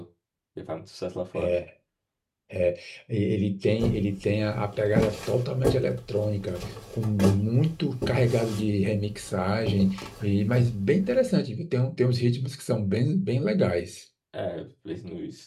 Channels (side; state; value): both; identical; correlation 1.00